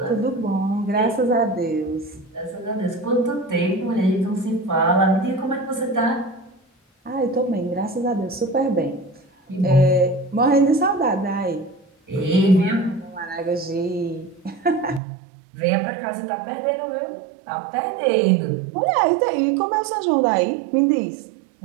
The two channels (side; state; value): left; drops out; at 15.0 s